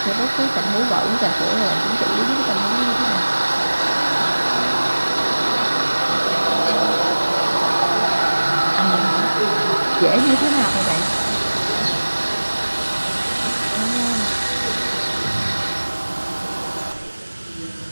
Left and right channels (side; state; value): both; inverted; correlation -1.00